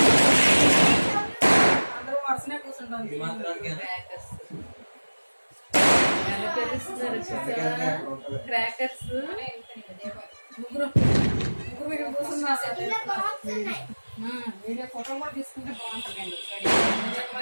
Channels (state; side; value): inverted; both; correlation -1.00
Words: క్రాకర్స్ ముగ్గురు వీడియో ఫోటో కూడా తీసుకుంటే బాగుంటుంది.